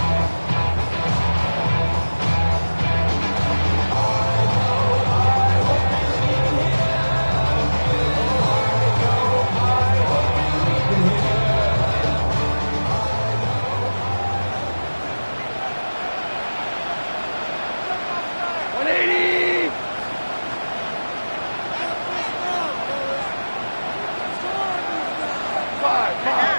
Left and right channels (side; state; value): both; inverted; correlation -1.00